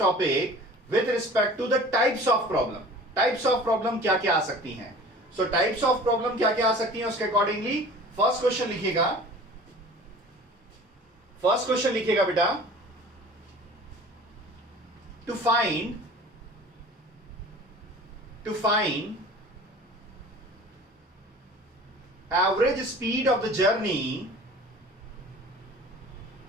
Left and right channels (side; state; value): both; normal; correlation 0.43